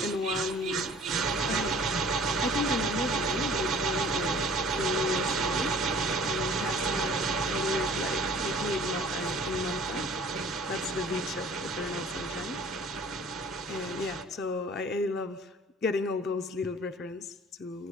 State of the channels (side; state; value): both; normal; correlation 0.50